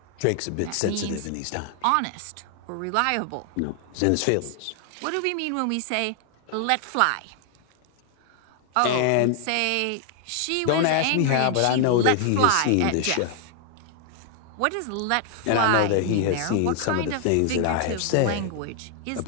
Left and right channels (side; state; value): both; different; correlation 0.00